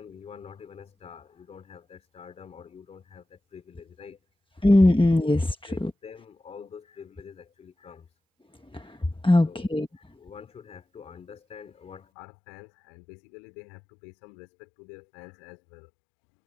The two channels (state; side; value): drops out; right; at 12.0 s